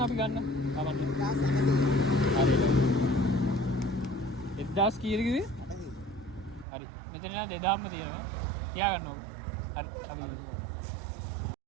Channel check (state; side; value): drops out; left; at 6.7 s